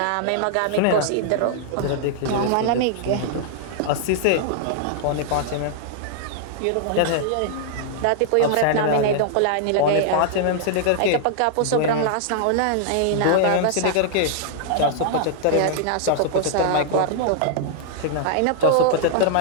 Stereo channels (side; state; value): both; different; correlation -0.01